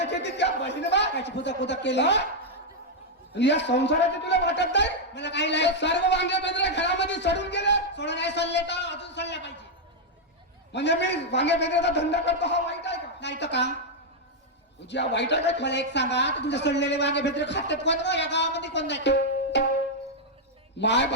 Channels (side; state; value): both; normal; correlation -0.02